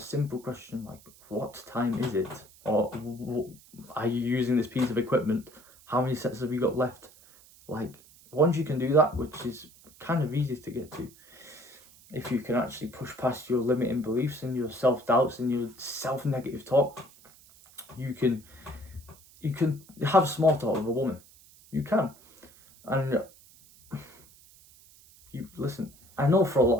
simple question like, what time is it? Or, are you using this piece of equipment? How many sets have you got left? Like, once you can do that, which is kind of easy to get to, if you can actually push past your limiting beliefs and your self-doubts and your self-negative talk, you can have small talk with a woman. You can. And you listen, I know for a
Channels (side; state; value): right; noise; hiss, 25 dB below the sound